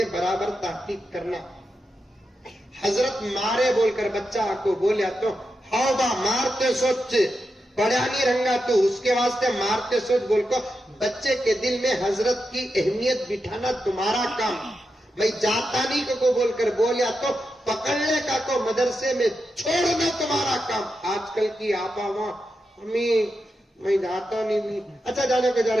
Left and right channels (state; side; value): normal; both; correlation 0.88